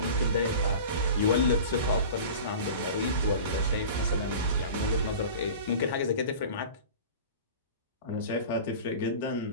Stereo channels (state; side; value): inverted; both; correlation -0.37